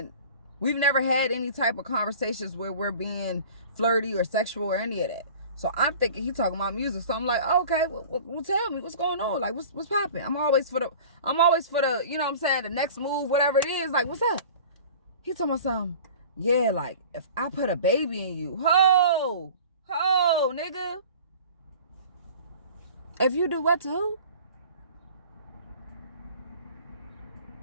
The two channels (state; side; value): inverted; both; correlation -0.42